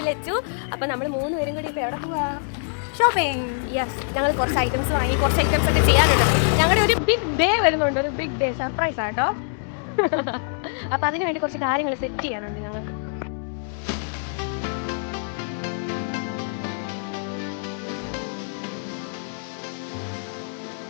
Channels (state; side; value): silent; right; digital silence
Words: ലച്ചു. അപ്പം നമ്മൾ 3 പേരും കൂടി ഇപ്പോൾ എവിടെ പോവാ? ഷോപ്പിംഗ്. യെസ്, ഞങ്ങൾ കുറച്ച് ഐറ്റംസ് വാങ്ങി, കുറച്ച് ഐറ്റംസ് ഒക്കെ ചെയ്യാനുണ്ട്. ഞങ്ങളുടെ ഒരു ബിഗ് ഡേ വരുന്നുണ്ട്, ഒരു ബിഗ് ഡേ സർപ്രൈസ് ആട്ടോ. അപ്പം അതിന് വേണ്ടി കുറച്ച് കാര്യങ്ങൾ സെറ്റ് ചെയ്യാനുണ്ട് ഞങ്ങൾക്ക്.